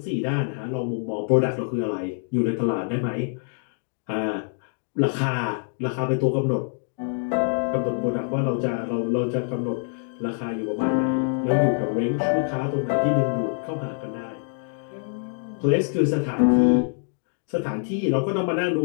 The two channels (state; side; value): silent; right; 62 dB below the other